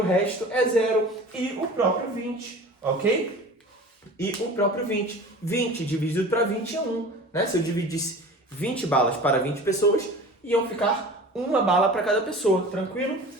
resto é 0. E o próprio 20, ok? E o próprio 20. 20 dividido para 20 é 1. Né? Se eu dividisse 20 balas para 20 pessoas, iam ficar uma bala para cada pessoa. Tranquilo?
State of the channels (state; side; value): normal; both; correlation 0.39